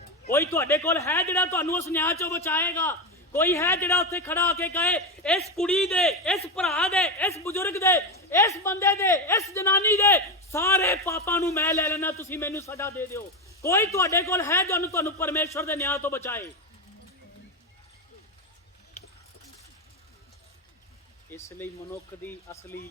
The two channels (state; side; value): normal; both; correlation 0.13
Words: ਕੋਈ ਤੁਹਾਡੇ ਕੋਲ ਹੈ ਜਿਹੜਾ ਤੁਹਾਨੂੰ ਉਸ ਨਿਆਂ ਚੋਂ ਬਚਾਏਗਾ? ਕੋਈ ਹੈ ਜਿਹੜਾ ਉੱਥੇ ਖੜਾ ਹੋ ਕੇ ਕਹੇ ਇਸ ਕੁੜੀ ਦੇ, ਇਸ ਭਰਾ ਦੇ, ਇਸ ਬਜ਼ੁਰਗ ਦੇ, ਇਸ ਬੰਦੇ ਦੇ, ਇਸ ਜਨਾਨੀ ਦੇ ਸਾਰੇ ਪਾਪਾਂ ਨੂੰ ਮੈਂ ਲੈ ਲੈਣਾ, ਤੁਸੀਂ ਮੈਨੂੰ ਸਜ਼ਾ ਦੇ ਦਿਓ? ਕੋਈ ਤੁਹਾਡੇ ਕੋਲ ਹੈ ਜੋ ਤੁਹਾਨੂੰ ਪਰਮੇਸ਼ਰ ਦੇ ਨਿਆਂ ਤੋਂ ਬਚਾਏ? ਇਸ ਲਈ ਮਨੁੱਖ ਦੀ ਅਸਲੀ